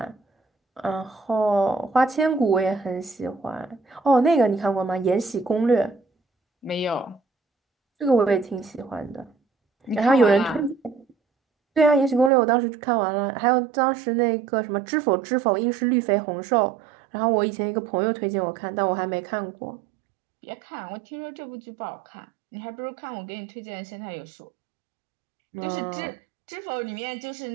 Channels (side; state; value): left; drops out; at 12.3 s